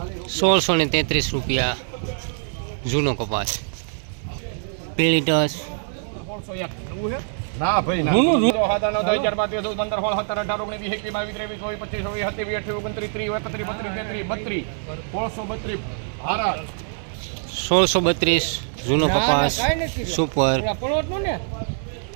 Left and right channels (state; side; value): silent; left; 63 dB below the other